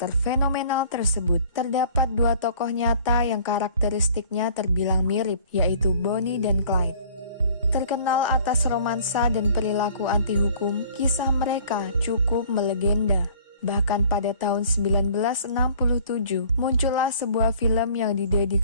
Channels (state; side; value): inverted; both; correlation -0.51